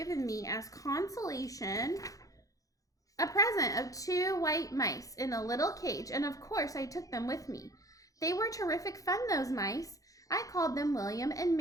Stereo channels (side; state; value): right; late; 0.17 ms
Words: me as consolation a present of 2 white mice in a little cage, and of course I took them with me. They were terrific fun, those mice. I called them William and